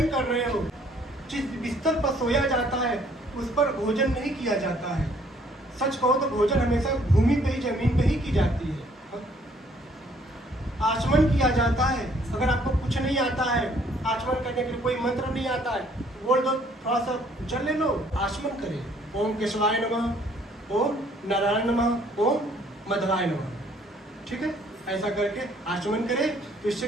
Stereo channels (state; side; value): normal; both; correlation 0.62